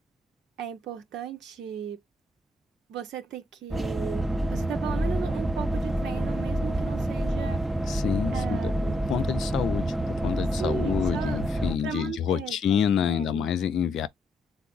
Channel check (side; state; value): both; normal; correlation 0.77